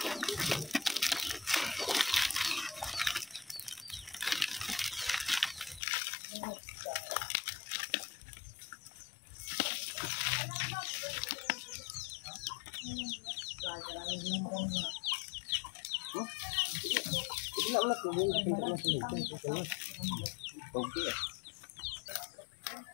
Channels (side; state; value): right; drops out; at 5.8 s